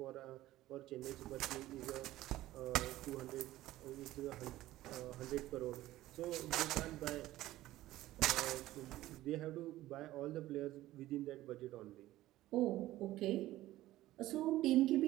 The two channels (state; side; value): quieter; left; 15.7 dB